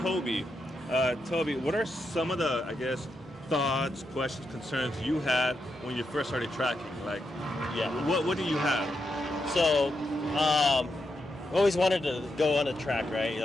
Toby. Toby, what are some of the, I guess, thoughts, questions, concerns you had when you first started tracking? Like, Yeah. what do you have? So, always wanted to go on a track, right?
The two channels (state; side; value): normal; both; correlation 0.84